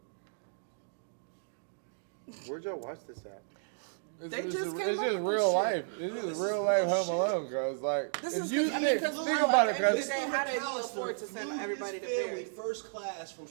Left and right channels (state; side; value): silent; left; digital silence